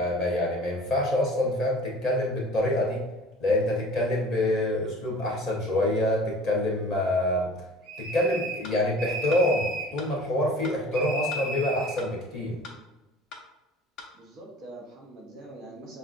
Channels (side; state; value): both; normal; correlation 0.44